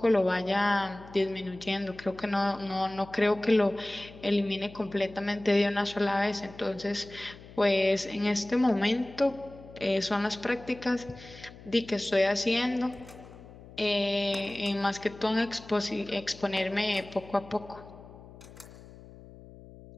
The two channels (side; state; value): left; noise; hum, 19 dB below the sound